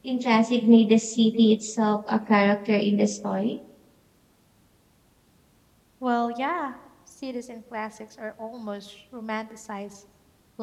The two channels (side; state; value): both; identical; correlation 1.00